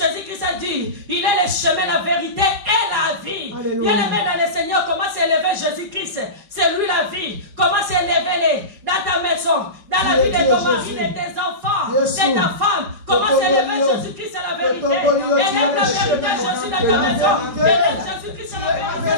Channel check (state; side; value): late; left; 5.3 ms